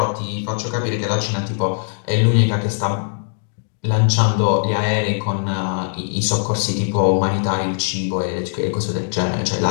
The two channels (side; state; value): right; silent; 66 dB below the other